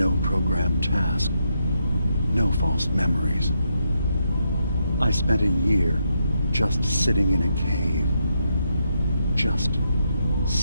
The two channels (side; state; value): both; inverted; correlation -0.81